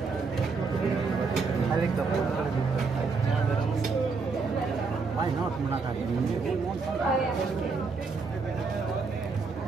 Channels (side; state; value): left; quieter; 4.6 dB